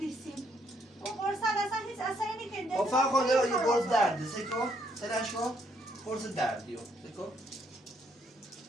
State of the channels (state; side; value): normal; both; correlation 0.71